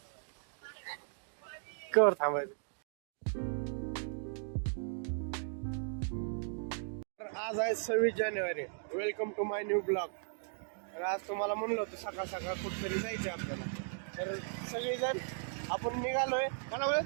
कर थांबायचं. आज आहे 26 जानेवारी. Welcome to my new blog. तर आज तुम्हाला म्हणलं होतं सकाळ सकाळ कुठेतरी जायचंय आपल्याला. तर सगळेजण आपण निघालोय. मला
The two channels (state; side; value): silent; left; digital silence